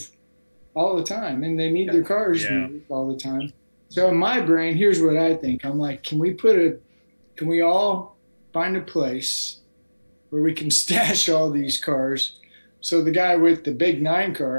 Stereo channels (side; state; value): both; inverted; correlation -1.00